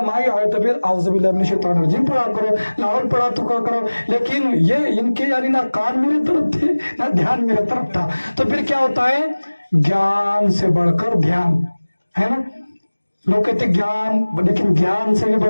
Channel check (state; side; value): inverted; both; correlation -1.00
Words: آئے تو پھر اعوذ باللہ من الشیطان الرجیم پڑھا کرو، لاہور پڑھا تو کیا کرو، لیکن یہ ان کے یعنی نہ کان میرے طرف تھے نہ دھیان میرے طرف تھا۔ تو پھر کیا ہوتا ہے، گیان سے بڑھ کر دھیان ہے نا، लोग कहते ज्ञान, लेकिन ज्ञान से भी